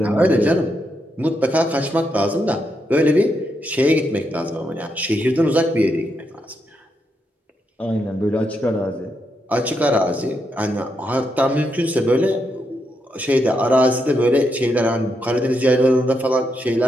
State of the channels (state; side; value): normal; both; correlation 0.81